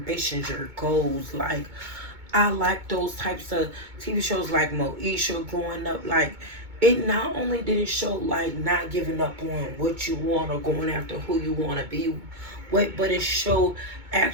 your goals. Like, I like those types of TV shows like Moesha growing up. Like, it not only did it show like not giving up on what you want or going after who you want to be with, but it showed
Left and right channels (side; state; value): left; late; 2.2 ms